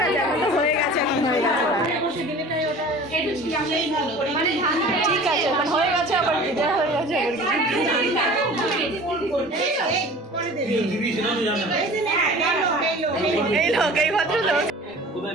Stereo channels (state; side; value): normal; both; correlation 0.42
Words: আছে, এখন তো হয়ে গেছে, এখন হয়ে গেছে। ঠিক আছে, এখন হয়ে গেছে, আবার বিদায় হয়ে গেছে, এই লোক, এই ভদ্রলোক।